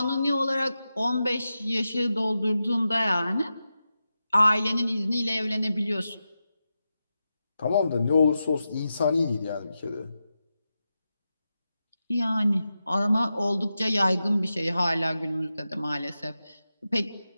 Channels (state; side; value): inverted; both; correlation -0.90